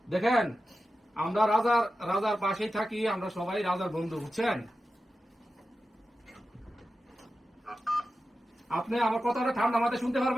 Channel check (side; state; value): both; normal; correlation 0.93